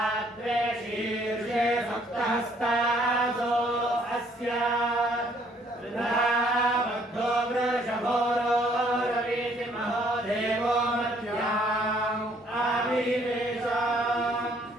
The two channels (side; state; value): both; normal; correlation 0.64